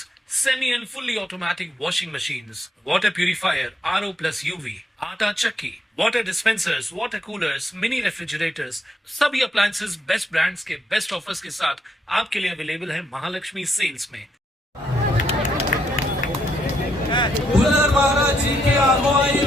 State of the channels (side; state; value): both; normal; correlation 0.76